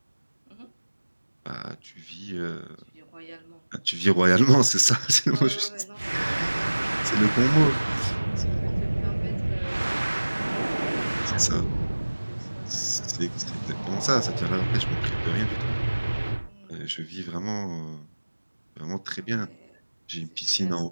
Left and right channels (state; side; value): inverted; both; correlation -1.00